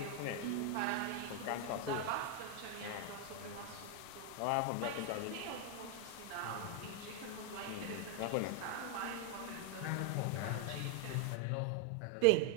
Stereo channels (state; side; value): different; both; correlation 0.00